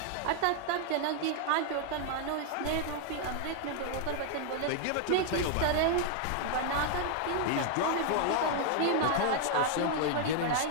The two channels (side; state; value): both; different; correlation 0.00